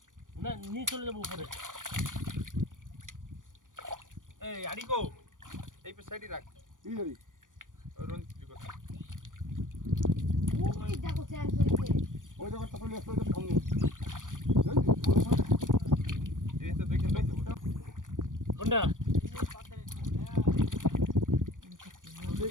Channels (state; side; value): late; left; 0.88 ms